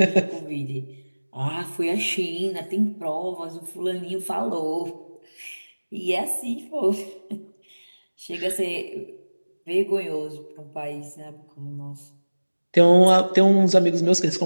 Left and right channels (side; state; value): both; inverted; correlation -1.00